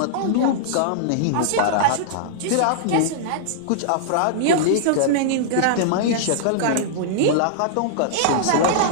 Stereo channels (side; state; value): both; different; correlation -0.02